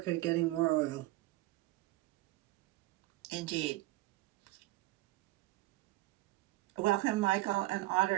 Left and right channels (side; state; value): left; quieter; 18.1 dB